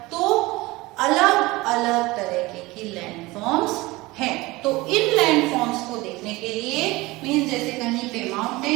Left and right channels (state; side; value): quieter; left; 21.1 dB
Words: तो अलग अलग तरह की लैंडफॉर्म्स हैं। तो इन लैंडफॉर्म्स को देखने के लिए मीन्स जैसे कहीं पे